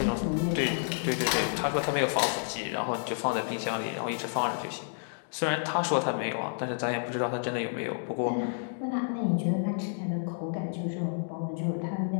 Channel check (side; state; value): right; silent; digital silence